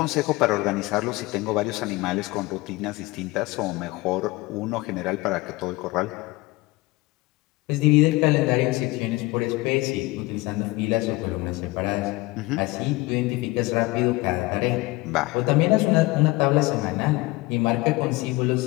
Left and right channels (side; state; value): right; quieter; 21.7 dB